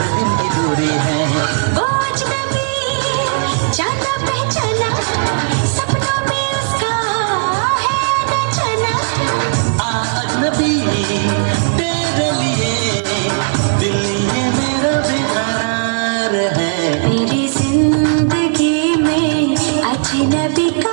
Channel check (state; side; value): silent; left; digital silence